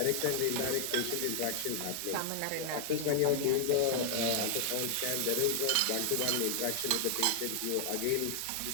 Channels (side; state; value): both; different; correlation 0.00